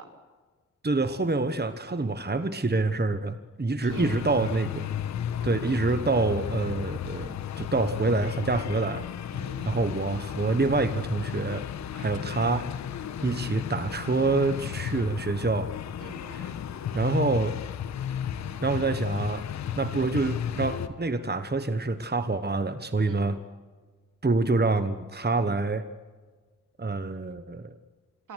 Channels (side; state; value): both; normal; correlation 0.46